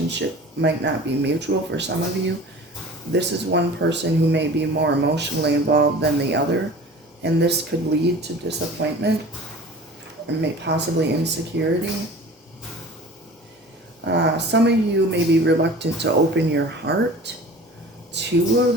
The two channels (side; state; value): both; normal; correlation 0.41